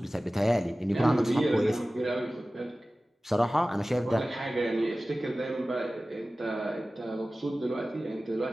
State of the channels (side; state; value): both; normal; correlation 0.97